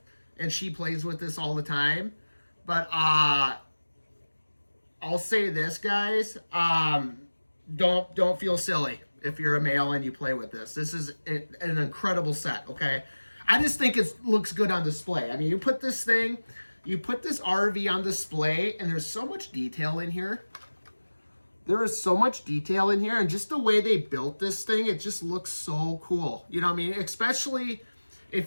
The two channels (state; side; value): inverted; both; correlation -1.00